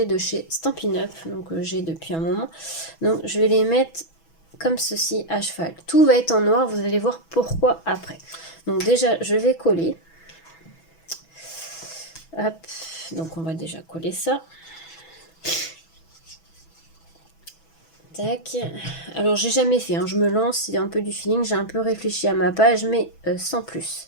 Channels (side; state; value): right; late; 6.1 ms